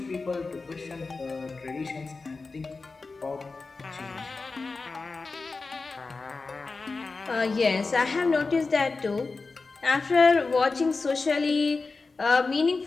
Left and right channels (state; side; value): quieter; right; 4.0 dB